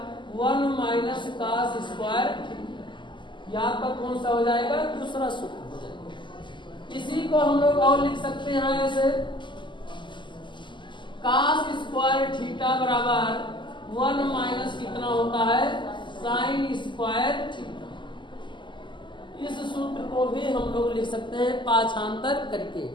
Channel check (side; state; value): right; late; 0.23 ms